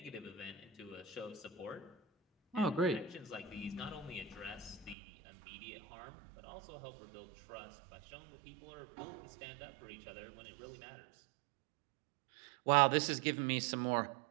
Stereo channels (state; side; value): drops out; left; at 5.0 s